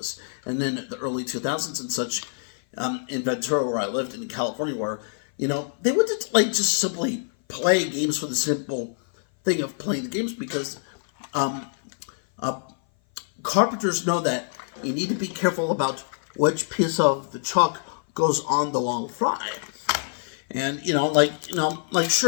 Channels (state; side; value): silent; right; 57 dB below the other